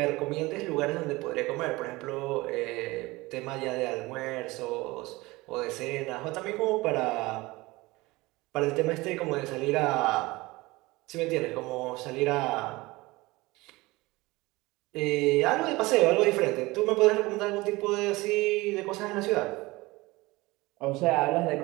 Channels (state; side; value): quieter; left; 21.5 dB